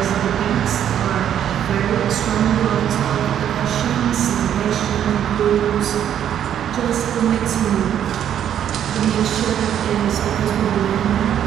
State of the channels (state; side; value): quieter; left; 9.9 dB